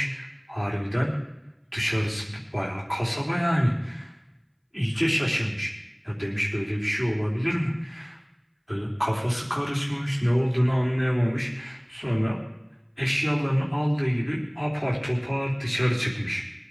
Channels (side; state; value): both; identical; correlation 1.00